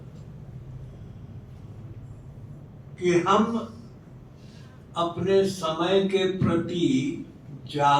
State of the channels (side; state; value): both; identical; correlation 1.00